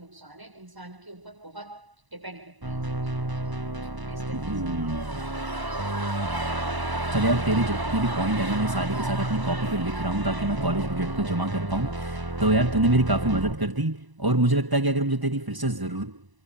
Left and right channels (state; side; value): late; left; 1.0 ms